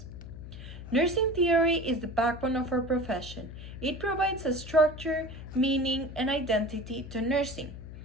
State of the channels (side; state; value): left; noise; hum, 12 dB below the sound